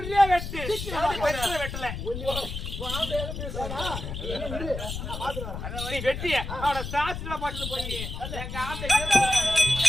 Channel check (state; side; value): noise; left; rumble, 6 dB below the sound